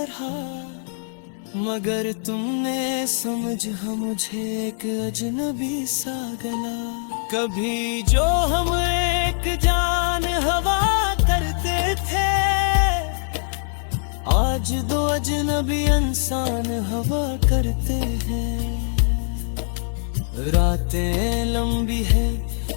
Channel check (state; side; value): silent; right; 64 dB below the other